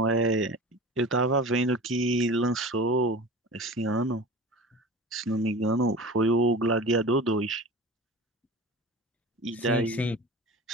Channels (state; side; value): normal; both; correlation 0.35